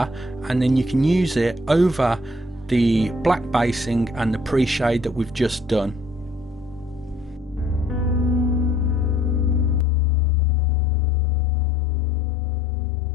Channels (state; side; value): drops out; right; at 9.9 s